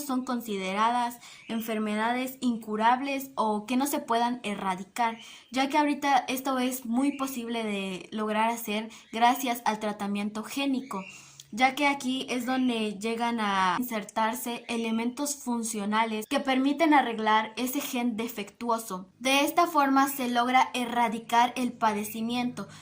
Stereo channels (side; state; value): both; identical; correlation 1.00